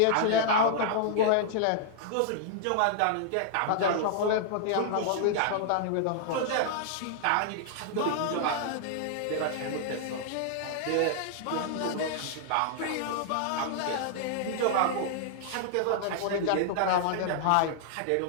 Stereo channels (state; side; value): different; both; correlation -0.01